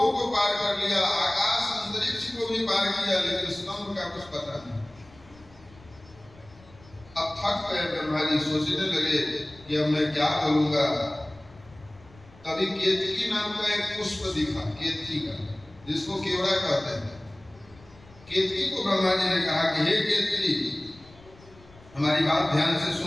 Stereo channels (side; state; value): left; noise; rumble, 24 dB below the sound